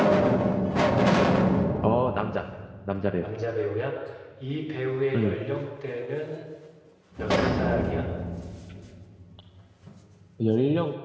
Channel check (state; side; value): identical; both; correlation 1.00